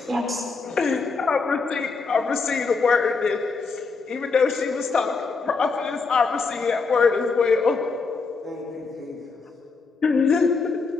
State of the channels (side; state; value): right; quieter; 4.5 dB